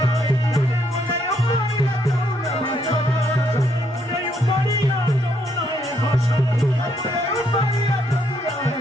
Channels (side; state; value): both; normal; correlation 0.72